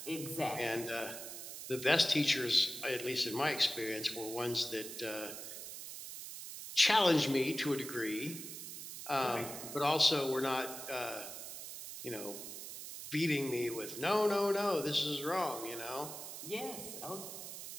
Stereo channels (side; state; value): right; noise; hiss, 9 dB below the sound